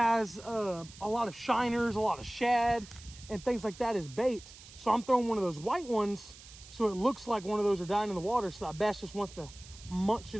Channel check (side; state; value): right; noise; hiss, 19 dB below the sound